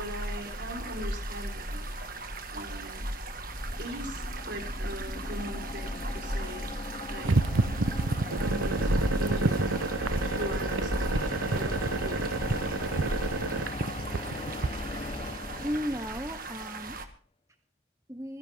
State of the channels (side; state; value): both; normal; correlation 0.54